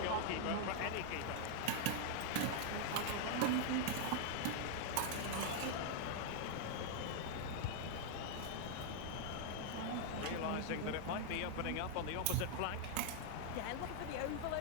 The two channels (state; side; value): different; both; correlation 0.00